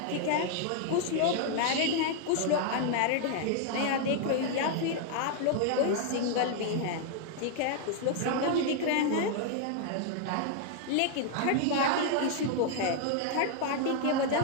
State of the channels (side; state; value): both; different; correlation 0.00